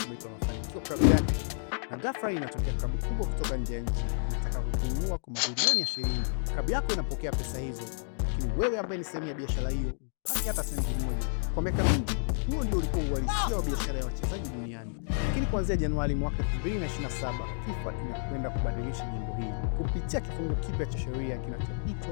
umeipa mafanikio klabu yako, na ghafla inatokea klabu kubwa kutoka nje ya nchi inataka kukununua kwa mabilioni ya shilingi. Klabu yako inapokea pesa hizo, lakini wewe ambaye ni sehemu ya biashara hiyo hupati hata senti moja. Kwa miaka mingi, huo ndio ulikuwa uhalisia wa biashara ya wachezaji duniani. Lakini kuanzia Januari mwaka 2027, FIFA inakwenda kubadilisha jambo hili kupitia kifungu kipya cha sheria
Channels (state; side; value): silent; right; digital silence